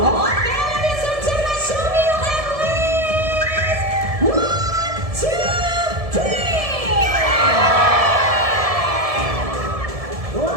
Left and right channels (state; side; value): late; left; 1.7 ms